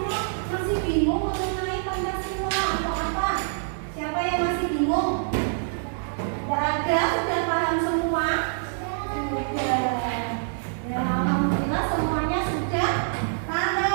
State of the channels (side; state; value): left; silent; digital silence